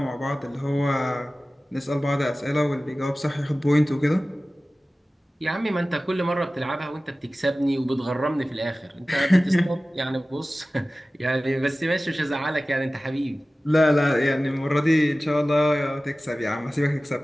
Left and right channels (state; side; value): normal; both; correlation 0.96